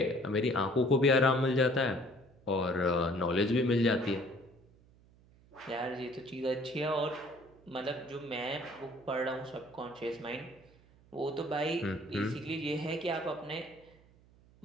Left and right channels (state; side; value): noise; right; hum, 27 dB below the sound